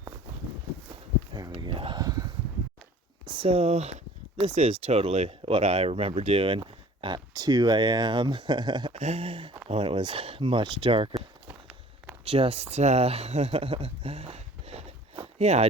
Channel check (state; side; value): normal; both; correlation 0.49